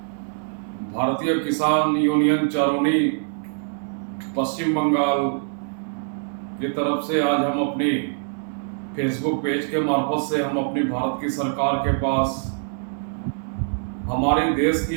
भारतीय किसान यूनियन चारोनी पश्चिम बंगाल की तरफ से आज हम अपनी फेसबुक पेज के मार्फत से हम अपनी भारत की सरकार के पास हमारी देश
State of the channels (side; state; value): left; silent; 63 dB below the other